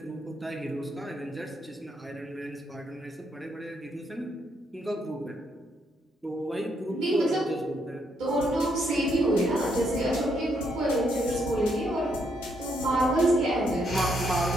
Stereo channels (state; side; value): normal; both; correlation 0.75